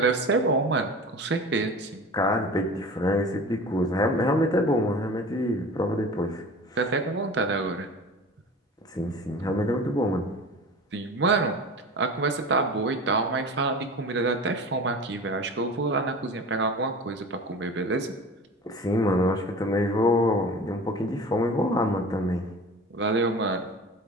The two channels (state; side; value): normal; both; correlation 0.36